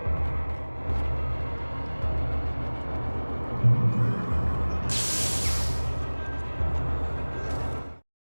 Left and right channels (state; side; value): inverted; both; correlation -1.00